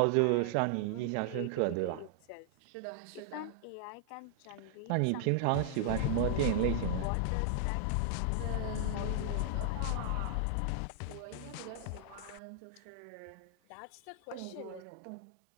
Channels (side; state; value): both; different; correlation -0.01